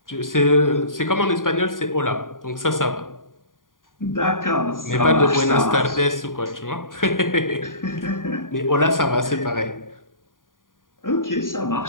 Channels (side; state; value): right; late; 0.89 ms